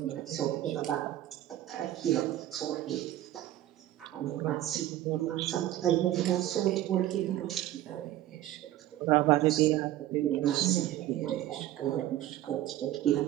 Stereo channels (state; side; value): quieter; left; 13.7 dB